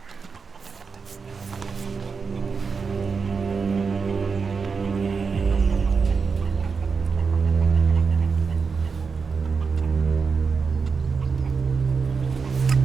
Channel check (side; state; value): left; quieter; 5.2 dB